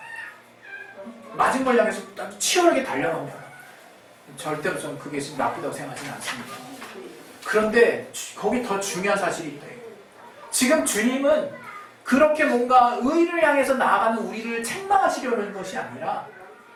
맞은 걸 향해서 치열하게 달려갑니다. 절대로 저는 그게 지금 나쁘다고 생각하지는 않습니다. 그런데 거기 더 중요한 사실이 있다. 지금 주님은 그렇게 뭔가 의를 향해서 나아가는 우리를 책망하시려는 것이 아니라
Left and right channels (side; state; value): both; identical; correlation 1.00